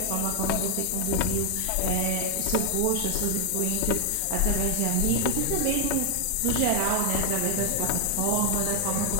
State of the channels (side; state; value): both; different; correlation 0.00